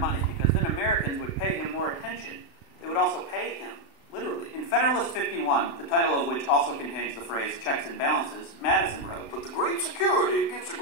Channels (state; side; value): late; right; 36 ms